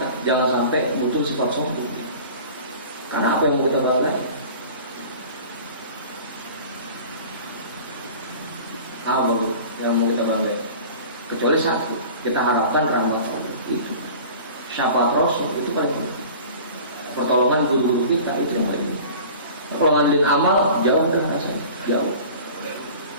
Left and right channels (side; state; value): both; inverted; correlation -0.41